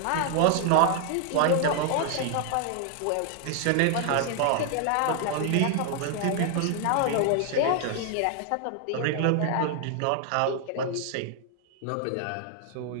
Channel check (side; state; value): both; different; correlation 0.00